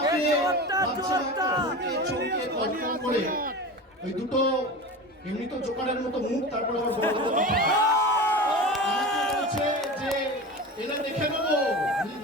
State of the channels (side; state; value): both; normal; correlation 0.29